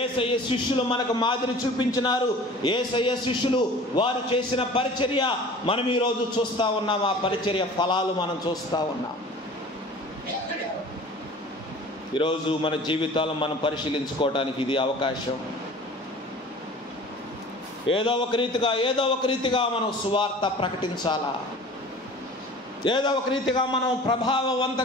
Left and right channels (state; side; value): normal; both; correlation 0.43